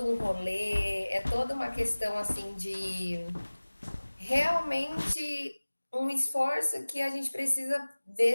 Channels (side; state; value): both; inverted; correlation -1.00